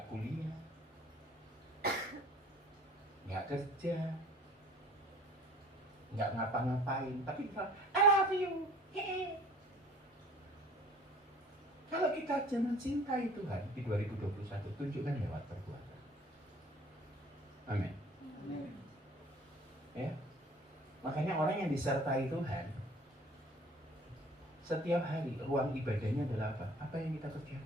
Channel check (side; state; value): both; normal; correlation 0.50